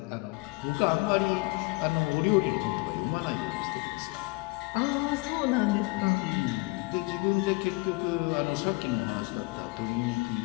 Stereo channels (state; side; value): quieter; right; 25.4 dB